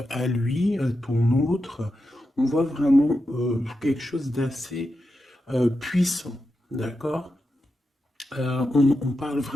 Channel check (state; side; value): normal; both; correlation 0.88